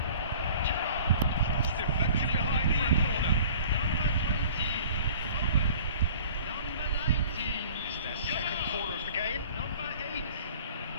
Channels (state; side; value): inverted; both; correlation -0.47